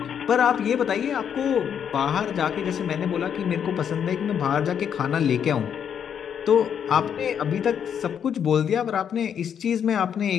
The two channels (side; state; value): right; quieter; 8.2 dB